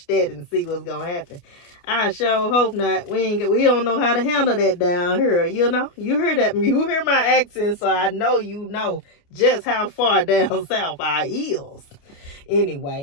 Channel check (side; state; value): right; late; 29 ms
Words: that and see what's gonna happen. I sure hope not. We don't know how to handle that down here. You know, you hear that? You hear my accent, so I know you know just how far down south I is.